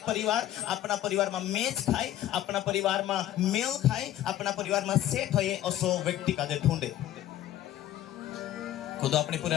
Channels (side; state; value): right; quieter; 12.7 dB